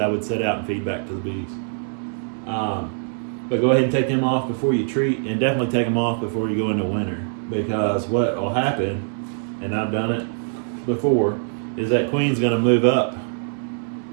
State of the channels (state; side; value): silent; left; digital silence